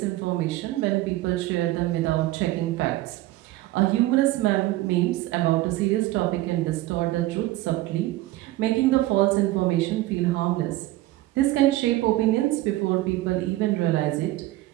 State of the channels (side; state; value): left; quieter; 17.1 dB